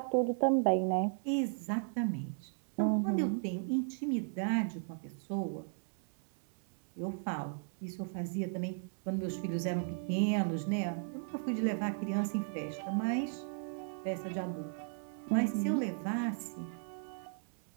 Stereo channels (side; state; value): left; silent; 54 dB below the other